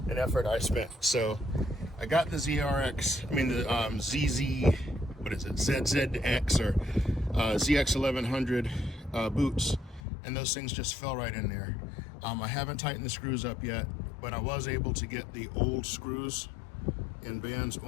effort I spent. So I got the ZRX, I mean the ZZ, what is it, ZZX or ZX 1100 boots, and those things just fell right in there. I haven't tightened the screws up yet, but I was able to get the old screws and bands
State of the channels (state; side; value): drops out; right; at 10.0 s